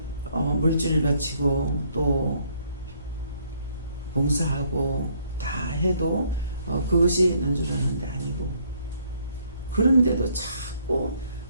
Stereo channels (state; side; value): inverted; both; correlation -0.66